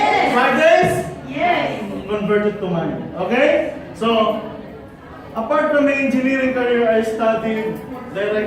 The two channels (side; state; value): both; identical; correlation 1.00